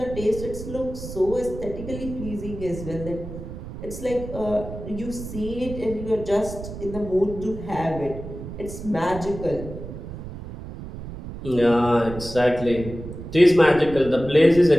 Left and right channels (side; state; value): right; noise; rumble, 11 dB below the sound